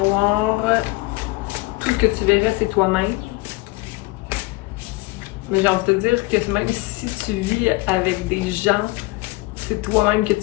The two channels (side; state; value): right; quieter; 22.2 dB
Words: tout ce que tu verrais, c'est toi-même. Mais j'ai envie de te dire que même si tu vis avec des gens, c'est toi-même que